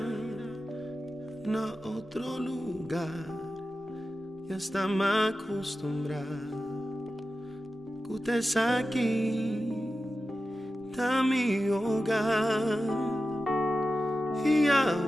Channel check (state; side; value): normal; both; correlation 0.92